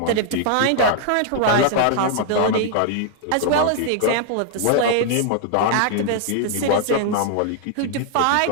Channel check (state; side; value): different; both; correlation 0.00